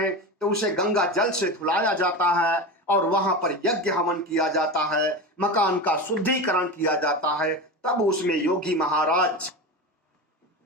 तो उसे गंगा जल से धुलाया जाता है और वहां पर यज्ञ हवन किया जाता है, मकान का शुद्धिकरण किया जाता है। तब उसमें योगी महाराज,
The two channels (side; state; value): both; normal; correlation 0.24